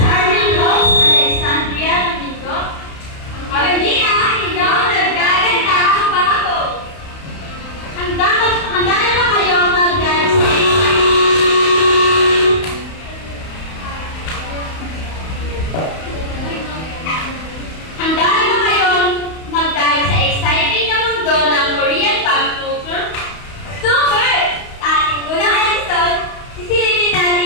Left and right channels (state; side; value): late; right; 31 ms